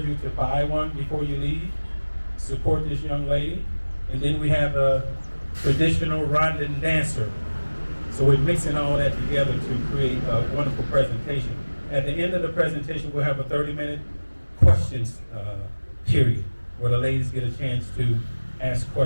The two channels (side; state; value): both; inverted; correlation -1.00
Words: you to buy one before you leave. Support this young lady. And then we have a traditional Rwandan dancer. So we're mixing all that together to create a wonderful presentation. At the end of the presentation, we'll have a 30-minute questions period where the ladies get a chance to ask